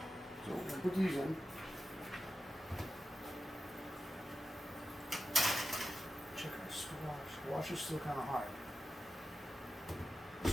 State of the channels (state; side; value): normal; both; correlation 0.92